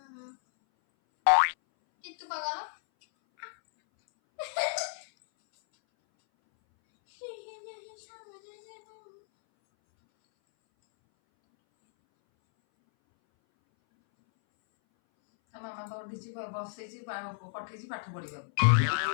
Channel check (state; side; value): silent; right; 56 dB below the other